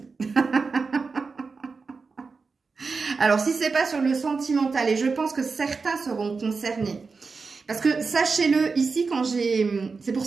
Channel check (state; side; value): quieter; left; 4.6 dB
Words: Alors, si c'est pas sur le sentimental, et je pense que certains seront concernés. Parce que, sachez-le, ici, quand j'ai... C'est pour